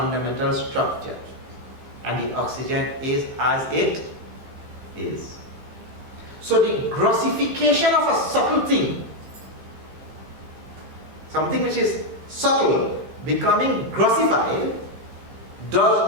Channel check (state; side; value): late; left; 15 ms